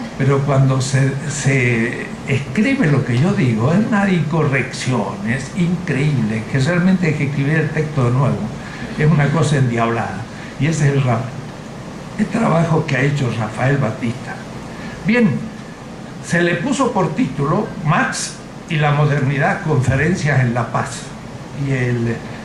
pero cuando se escribe lo que yo digo, es una incorrección, es increíble, que realmente hay que escribir el texto de nuevo, es una cosa endiablada. Y ese es el trabajo que ha hecho Rafael Batista. Bien, se le puso por título Marx y la modernidad, conferencias en La Paz. Y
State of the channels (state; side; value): identical; both; correlation 1.00